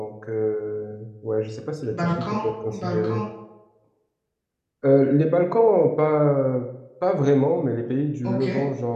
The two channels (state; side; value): identical; both; correlation 1.00